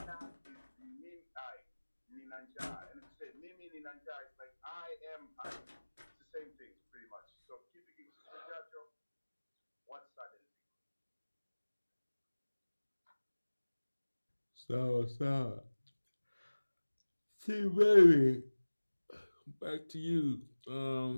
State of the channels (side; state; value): both; inverted; correlation -1.00